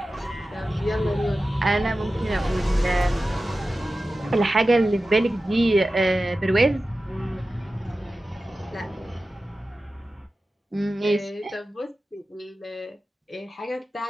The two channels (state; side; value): normal; both; correlation 0.94